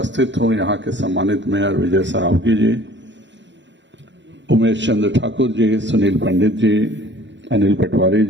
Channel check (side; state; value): left; late; 0.53 ms